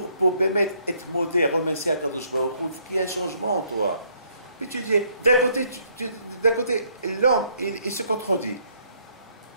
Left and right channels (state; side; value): inverted; both; correlation -0.68